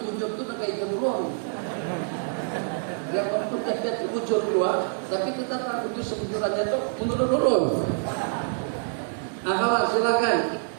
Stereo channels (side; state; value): left; silent; digital silence